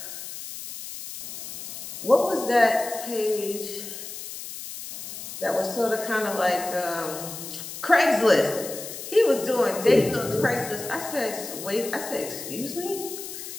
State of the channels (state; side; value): noise; left; hiss, 10 dB below the sound